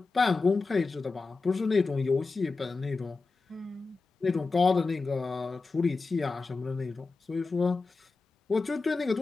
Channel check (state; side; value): quieter; right; 4.0 dB